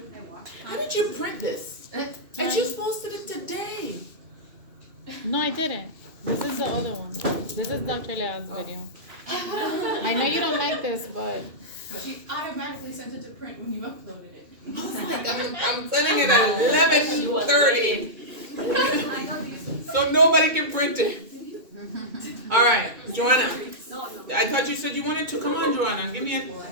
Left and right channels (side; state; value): left; late; 2.2 ms